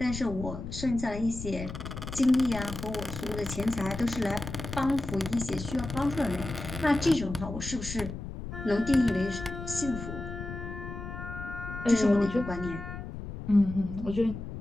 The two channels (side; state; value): left; noise; rumble, 8 dB below the sound